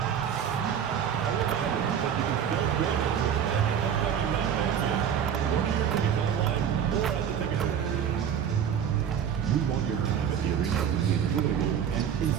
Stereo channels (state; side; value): quieter; left; 8.4 dB